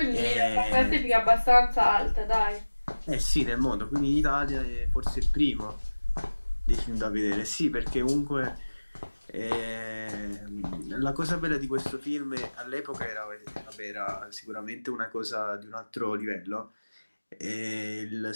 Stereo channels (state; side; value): inverted; both; correlation -1.00